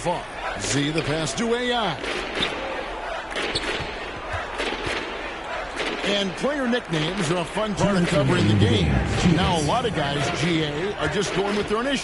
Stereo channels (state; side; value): identical; both; correlation 1.00